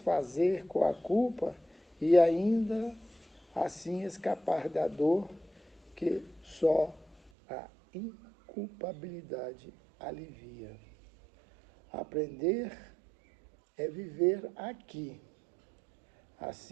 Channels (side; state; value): left; drops out; at 7.3 s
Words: com a culpa e ainda assim escapar da dor que só a inculpabilidade alivia. Aprender é viver aqui,